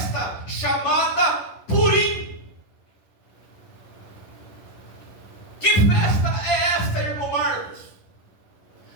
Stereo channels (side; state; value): right; late; 10 ms